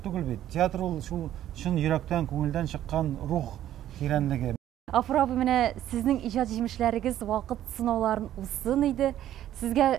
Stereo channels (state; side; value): quieter; left; 12.1 dB